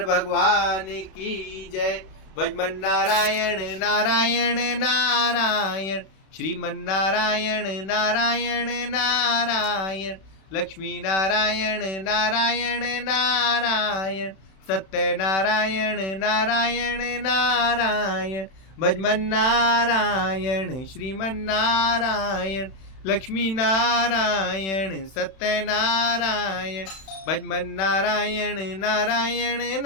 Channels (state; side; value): late; right; 31 ms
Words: भगवान की जय। भजमन नारायण नारायण नारायण, श्रीमन नारायण नारायण नारायण, लक्ष्मी नारायण नारायण नारायण, सत्य नारायण नारायण नारायण, भजमन नारायण श्रीमन नारायण, लक्ष्मी नारायण सत्य नारायण, भजमन नारायण नारायण